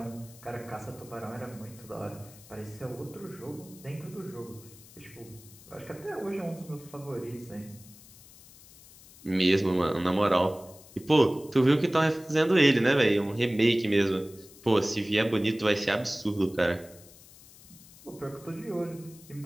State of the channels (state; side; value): noise; left; hiss, 22 dB below the sound